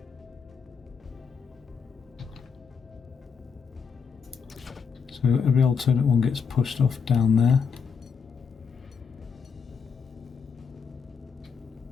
so every alternate one gets pushed off down there.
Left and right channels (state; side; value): quieter; right; 6.0 dB